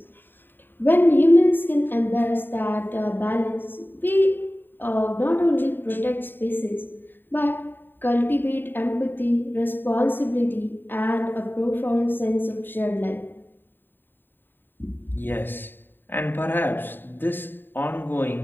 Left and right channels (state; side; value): late; right; 0.094 ms